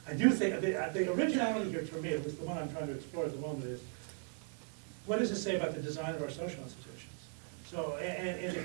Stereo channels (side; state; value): left; quieter; 38.2 dB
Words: I do think, the originality here, for me, at least the one I'm trying to explore at the moment, is what does it say about the design of our social institutions? So, and if